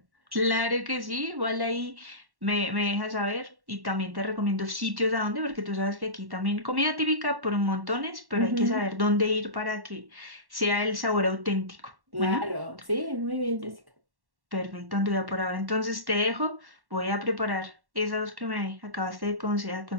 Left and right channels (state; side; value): late; left; 1.1 ms